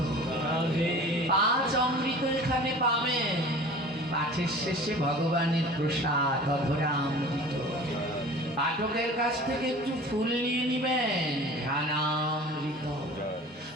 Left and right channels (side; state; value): both; normal; correlation 0.41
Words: পাঁচ অমৃত এখানে পাবেন। পাঠের শেষে ভগবানের প্রসাদ অধরামৃত। পাঠকের কাছ থেকে একটু ফুল নিয়ে নিবেন, ধ্যানামৃত।